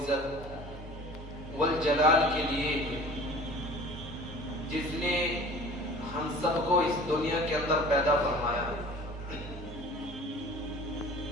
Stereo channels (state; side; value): normal; both; correlation 0.44